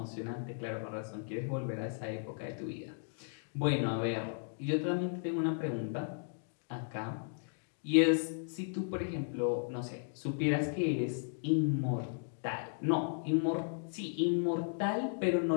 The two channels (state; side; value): silent; right; digital silence